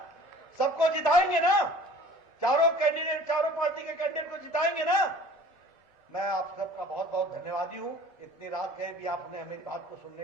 सबको जिताएंगे ना? चारों पार्टी के कैंडिडेट को जिताएंगे ना? मैं आप सबका बहुत बहुत धन्यवादी हूं। इतनी रात गए भी आपने मेरी बात को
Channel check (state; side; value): normal; both; correlation 0.48